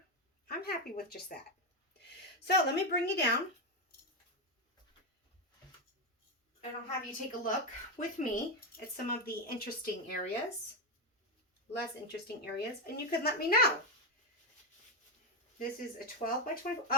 I'm happy with just that. So let me bring you down. And I'll have you take a look with me at some of the interesting areas, less interesting areas, and you can let me know. This is a 12 by 24.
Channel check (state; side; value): normal; both; correlation 0.08